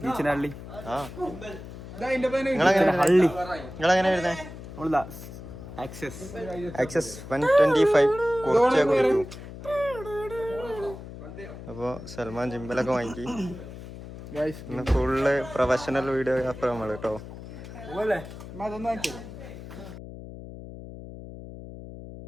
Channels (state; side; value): noise; left; hum, 13 dB below the sound